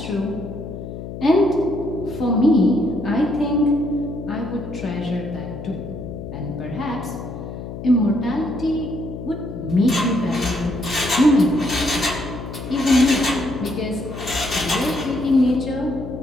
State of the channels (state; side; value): noise; left; hum, 9 dB below the sound